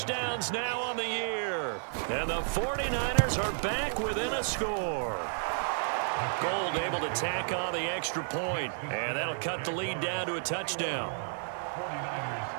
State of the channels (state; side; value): silent; left; digital silence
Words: now on the year. And the 49ers are back within a score. Gold able to tack on the extra point, and that'll cut the lead down to a touchdown.